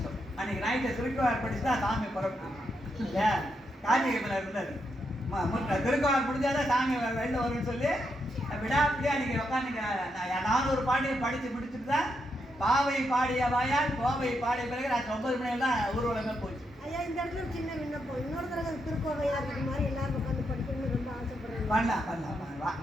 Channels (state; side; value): normal; both; correlation 0.81